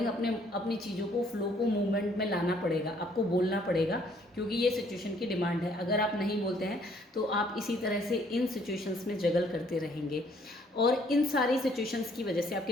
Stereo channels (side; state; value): both; normal; correlation 0.63